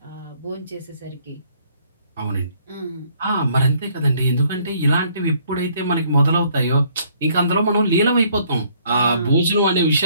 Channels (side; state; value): both; inverted; correlation -0.64